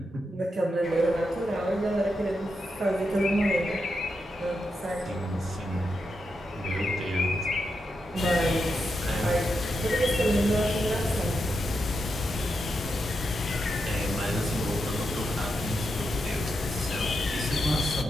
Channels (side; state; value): both; normal; correlation 0.85